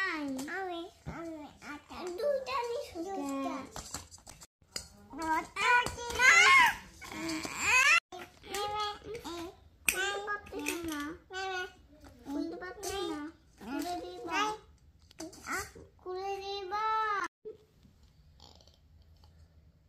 আচ্ছা দুইটা নিছো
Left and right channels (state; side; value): identical; both; correlation 1.00